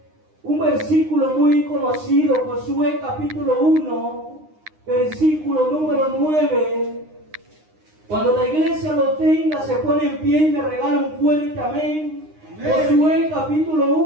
Un versículo muy conocido, Josué capítulo 1, versículo número 9. Cuando la iglesia lo tenga, se pone en pie y me regala un fuerte amén. Josué capítulo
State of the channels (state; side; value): late; left; 9.7 ms